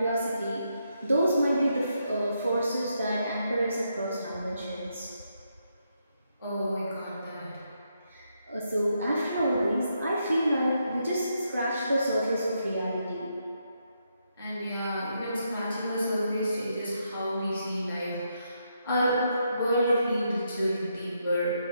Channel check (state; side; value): inverted; both; correlation -0.79